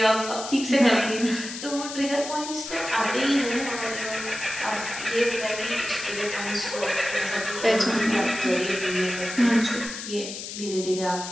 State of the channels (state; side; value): noise; left; hiss, 9 dB below the sound